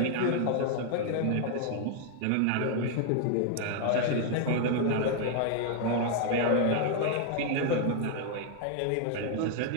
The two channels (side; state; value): both; different; correlation 0.00